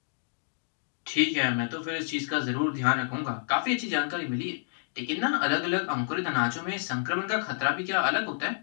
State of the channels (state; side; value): silent; right; digital silence